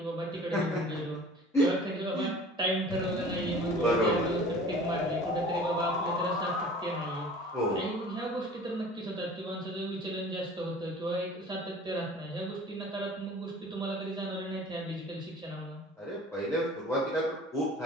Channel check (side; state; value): both; normal; correlation 0.45